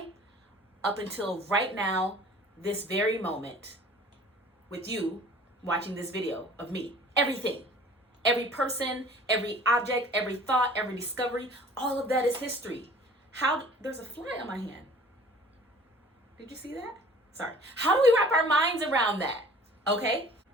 up until right now, this very moment, with you watching this video of me. Everything. Every person, every object, every thought, every discovery, all of that is history. There's a fly on my hand. Did you see that? Sorry. How do we wrap our minds around that? Okay?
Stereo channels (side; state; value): both; normal; correlation 0.48